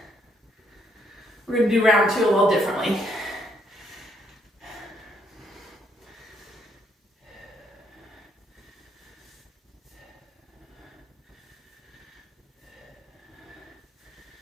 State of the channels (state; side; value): normal; both; correlation 0.72